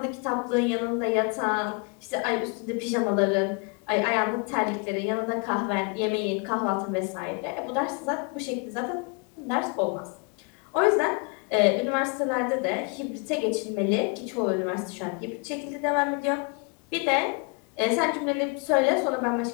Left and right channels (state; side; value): quieter; right; 33.1 dB